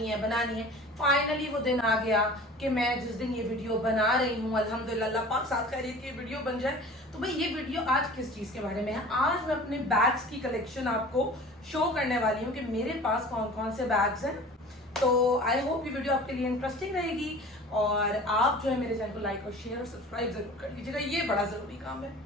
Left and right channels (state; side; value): normal; both; correlation 0.42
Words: है। फाइनली वो दिन आ गया कि मैं जिस दिन ये वीडियो बना रही हूँ, अल्हम्दुलिल्लाह अल्लाह पाक साथ खैरियत की वीडियो बन जाए। तो भाई ये वीडियो आज किस चीज़ के बारे में है? आज मैं अपने बैग्स की कलेक्शन आपको शो करने वाली हूँ कि मेरे पास कौन कौन से बैग्स हैं। तो आई होप ये वीडियो आपके लिए इंटरेस्टिंग रहेगी और आप जो है मेरे चैनल को लाइक और शेयर और सब्सक्राइब जरूर कर लीजिएगा, ये बड़ा ज़रूरी काम है।